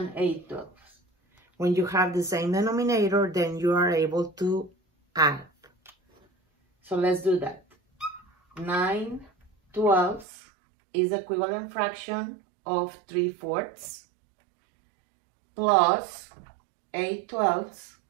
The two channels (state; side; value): drops out; left; at 10.2 s